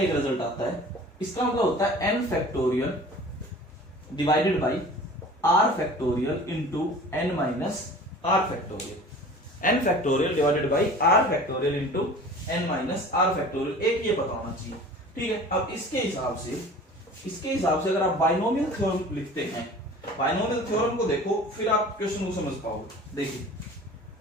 एक रिजल्ट आता है। इसका मतलब होता है n factorial divided by r factorial into n minus r factorial. N factorial divided by r factorial into n minus r factorial, एक ये पता होना चाहिए। ठीक है, अब इसके हिसाब से अगर आप बाइनोमियल थ्योरम लिखते हैं, बाइनोमियल थ्योरम को देखो फिर आप क्वेश्चन को समझ पाओगे। देखिए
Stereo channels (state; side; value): normal; both; correlation 0.42